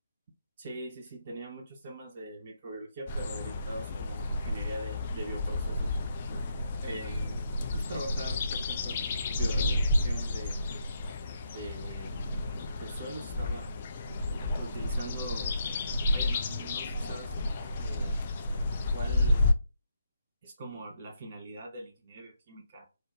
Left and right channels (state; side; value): inverted; both; correlation -0.78